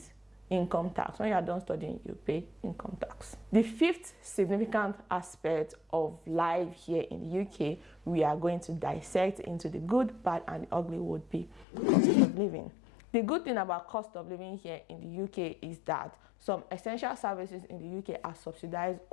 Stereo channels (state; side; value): drops out; right; at 11.7 s